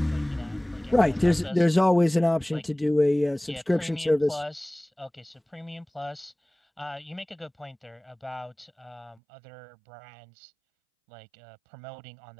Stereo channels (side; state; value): left; drops out; at 9.2 s